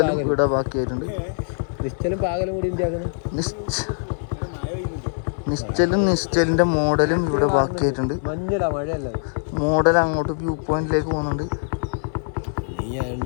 ഇവിടെ ബാക്കിയായിട്ടുണ്ട്. നിശ്ചലിന്റെ മോഡലും ഇവിടെ ബാക്കിയായിട്ടുണ്ട്. മോഡൽ അങ്ങോട്ട് വ്യൂ പോയിന്റിലേക്ക് പോകുന്നുണ്ട്.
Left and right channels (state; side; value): silent; right; 58 dB below the other